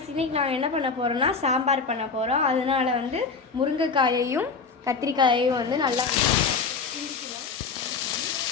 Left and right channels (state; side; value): quieter; right; 5.0 dB